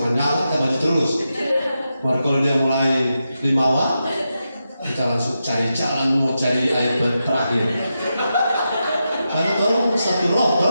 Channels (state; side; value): inverted; both; correlation -0.88